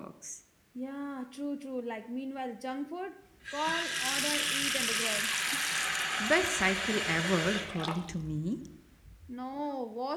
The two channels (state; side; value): identical; both; correlation 1.00